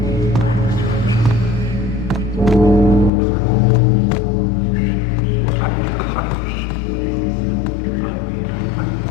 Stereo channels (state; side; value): drops out; right; at 3.1 s